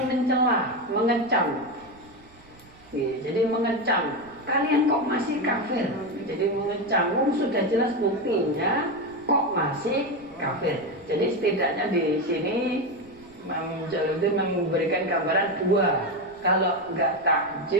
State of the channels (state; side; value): noise; right; rumble, 26 dB below the sound